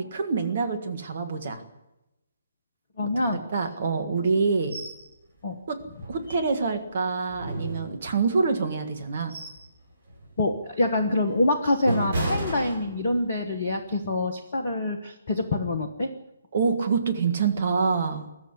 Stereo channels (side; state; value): both; inverted; correlation -0.72